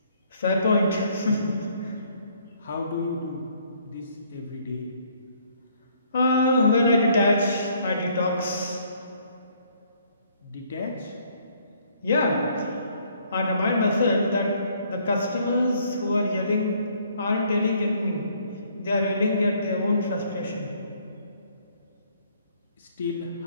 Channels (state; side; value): inverted; both; correlation -0.64